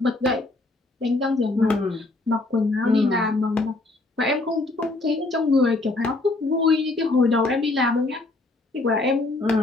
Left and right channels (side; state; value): right; quieter; 3.0 dB